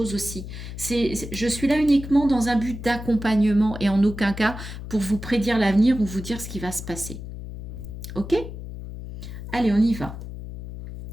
aussi. Je suis là uniquement dans un but d'accompagnement et en aucun cas pour vous prédire l'avenir ou vous dire ce qui va se passer. Ok? Allez, on y va.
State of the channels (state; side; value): noise; left; hum, 10 dB below the sound